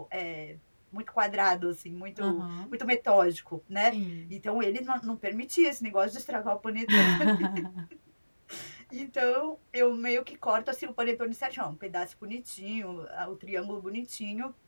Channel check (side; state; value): both; inverted; correlation -1.00